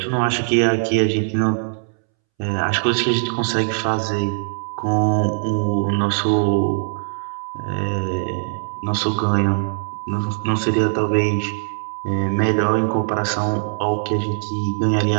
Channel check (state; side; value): silent; left; 65 dB below the other